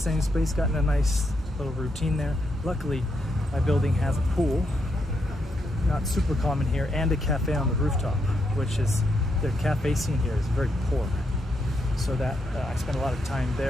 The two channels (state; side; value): normal; both; correlation 0.80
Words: space, got in a nice little routine there. Luckily, my building has a pool, not super common here, and a cafe on the rooftop, which is, the cafe scene here is very poor. So that I spent a lot of time